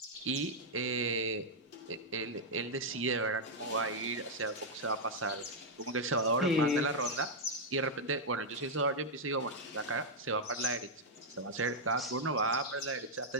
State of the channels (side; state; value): both; normal; correlation -0.03